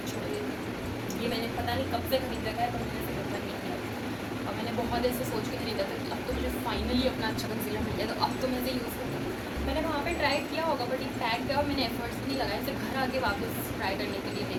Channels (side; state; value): both; identical; correlation 1.00